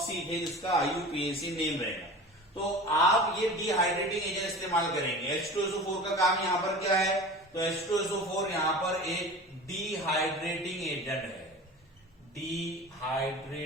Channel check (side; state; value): both; normal; correlation 0.36